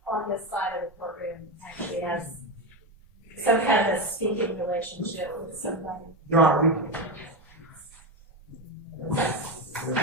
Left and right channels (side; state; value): both; normal; correlation 0.14